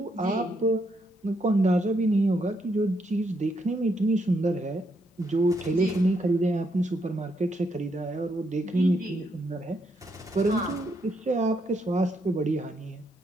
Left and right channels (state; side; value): normal; both; correlation 0.77